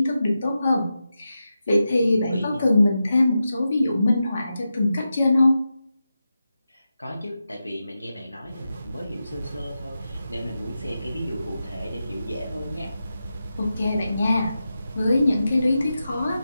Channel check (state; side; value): inverted; both; correlation -0.90